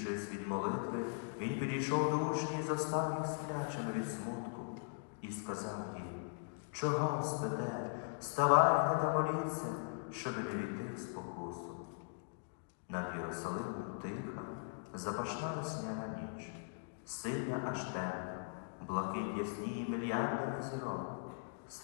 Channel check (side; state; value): right; silent; digital silence